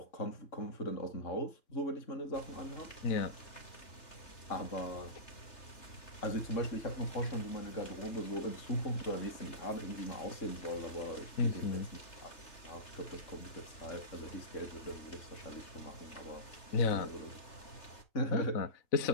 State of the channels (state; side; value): late; right; 3.3 ms